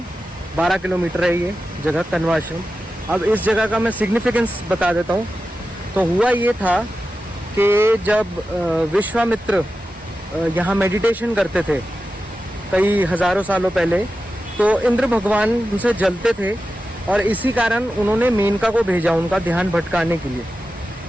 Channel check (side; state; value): both; normal; correlation 0.92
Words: 12 किलोमीटर है ये जगह कण्वाश्रम। अब इस जगह का मैं सिग्निफिकेंस बता देता हूँ। तो हुआ ये था कि जब विश्वामित्र यहाँ मेडिटेशन करते थे कई हज़ारों सालों पहले, तो इंद्र भगवान उनसे जलते थे और इसी कारण उन्होंने मेनका को भेजा उनका ध्यान भटकाने के लिए,